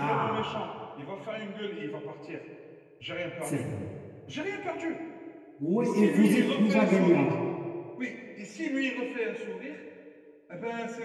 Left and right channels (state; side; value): identical; both; correlation 1.00